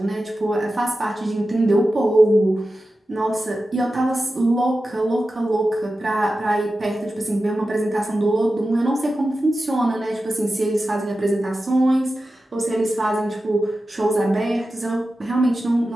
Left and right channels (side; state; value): both; normal; correlation 0.93